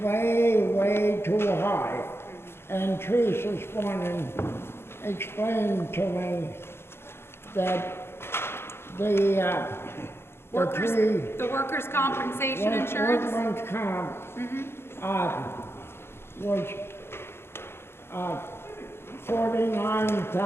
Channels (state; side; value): late; right; 0.12 ms